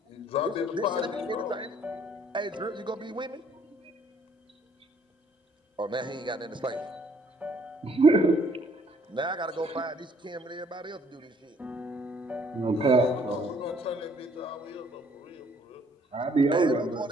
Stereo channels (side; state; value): both; normal; correlation 0.63